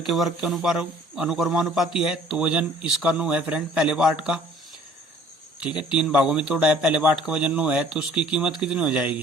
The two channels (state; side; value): normal; both; correlation 0.54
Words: वर्ग के अनुक्रमानुपाती है। तो वजन इसका 9 है फ्रेंड, पहले पार्ट का। ठीक है, 3 भागों में तोड़ा है, पहले पार्ट का वजन 9 है, तो उसकी कीमत कितनी हो